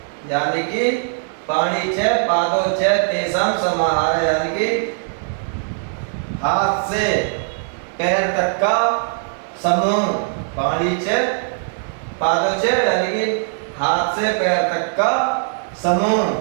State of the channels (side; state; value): left; silent; digital silence